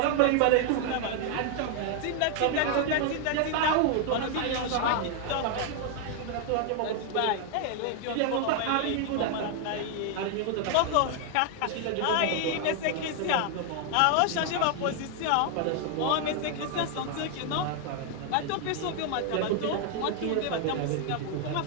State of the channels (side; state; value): both; different; correlation 0.00